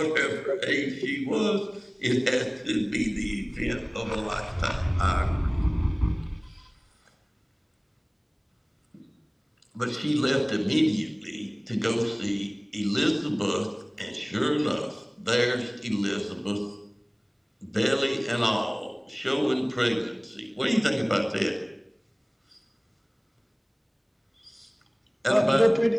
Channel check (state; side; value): identical; both; correlation 1.00